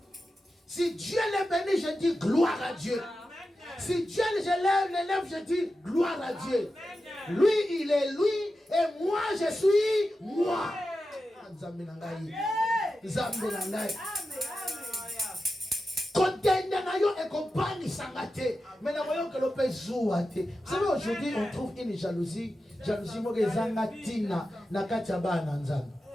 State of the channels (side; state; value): both; normal; correlation 0.92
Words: je dis gloire à Dieu. Lui, il est lui et moi, je suis moi. Nzambe na ngai. Nzambe na ngai. Contender na yo et compagnie sangate. Mais na voyons que l'opé zouate. Vous savez, aujourd'hui, on trouve une jalousie. Jalousie moke zanga tina na kati ya bana nzambe.